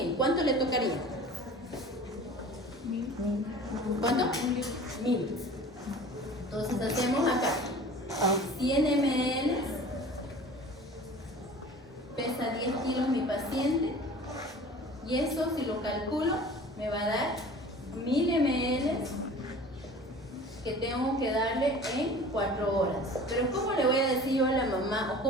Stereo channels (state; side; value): normal; both; correlation 0.43